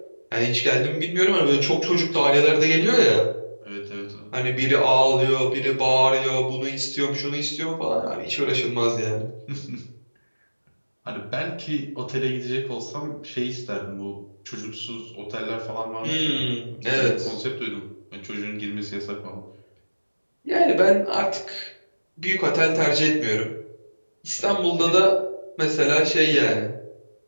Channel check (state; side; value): inverted; both; correlation -1.00